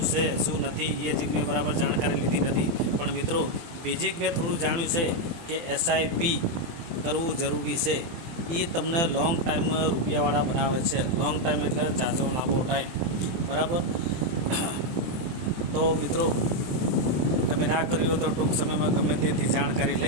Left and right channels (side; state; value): left; late; 24 ms